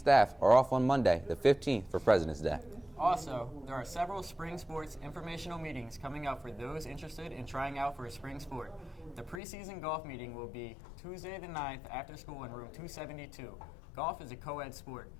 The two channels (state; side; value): drops out; right; at 9.4 s